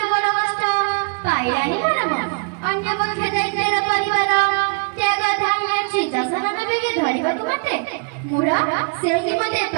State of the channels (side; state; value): left; quieter; 35.9 dB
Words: বড় কষ্ট পাইরানি পরম অন্য পক্ষে দায়িত্বের পরিবার ত্যাগা ধানের সিংহাসনে বেগে ধরিବାକୁ মতে মুরা ସେହି ମତେ